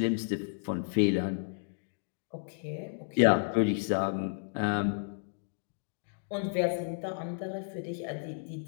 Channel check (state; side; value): silent; right; digital silence